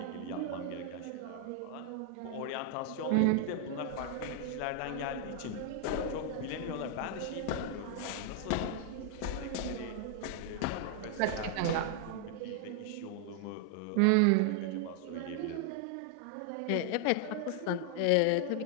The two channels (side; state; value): both; different; correlation 0.00